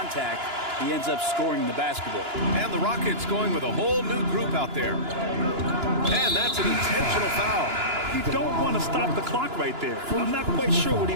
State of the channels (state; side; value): late; left; 2.9 ms